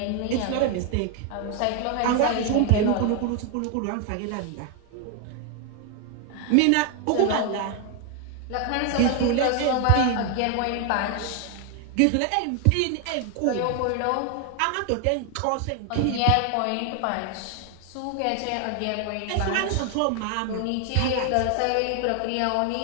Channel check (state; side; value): different; both; correlation 0.00